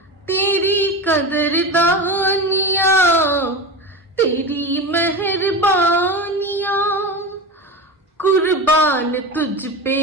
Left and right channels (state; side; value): normal; both; correlation 0.25